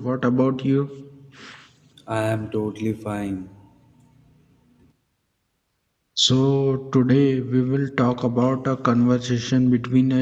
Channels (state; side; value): identical; both; correlation 1.00